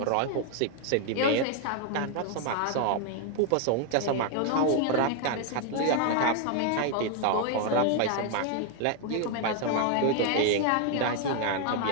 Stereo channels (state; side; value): different; both; correlation 0.00